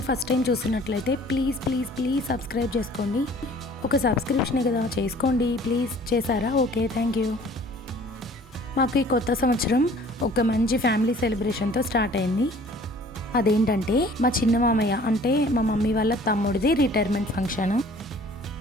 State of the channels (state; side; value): normal; both; correlation 0.51